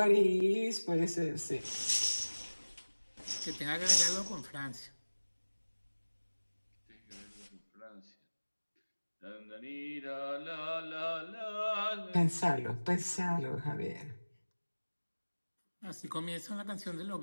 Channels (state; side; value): inverted; both; correlation -1.00